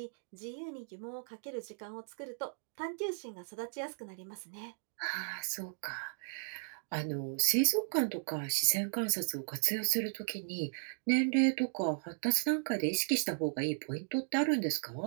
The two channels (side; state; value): left; silent; digital silence